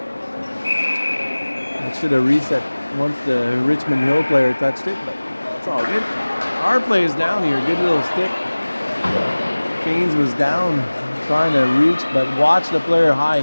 That should have reset once the Richmond Hill player touched it, but it's all good. Our player's down here. Good little stick. Keynes was down, trying to reach, but watch the player high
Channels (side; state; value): both; inverted; correlation -1.00